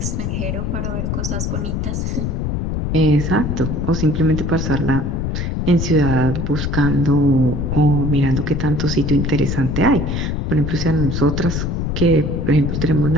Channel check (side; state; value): left; noise; rumble, 1 dB below the sound